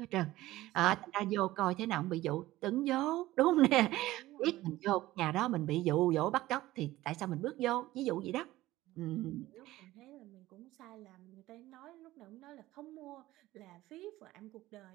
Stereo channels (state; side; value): quieter; left; 16.6 dB